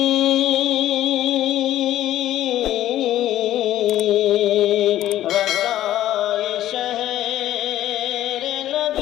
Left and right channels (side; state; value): right; quieter; 13.2 dB